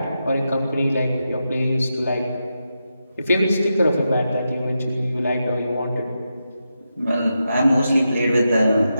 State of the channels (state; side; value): inverted; both; correlation -0.87